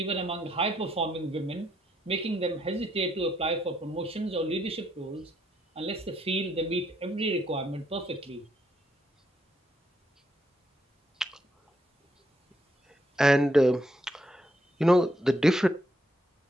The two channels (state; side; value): normal; both; correlation 0.75